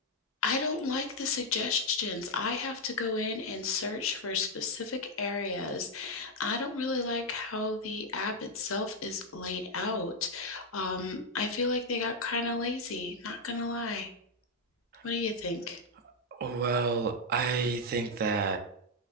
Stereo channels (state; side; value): normal; both; correlation 0.02